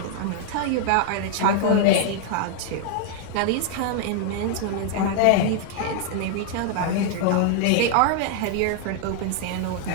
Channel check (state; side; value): different; both; correlation 0.00